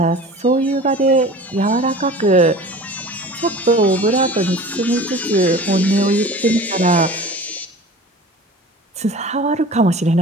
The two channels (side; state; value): both; normal; correlation 0.40